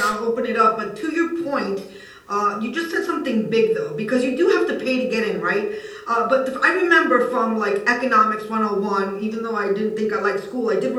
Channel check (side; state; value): both; identical; correlation 1.00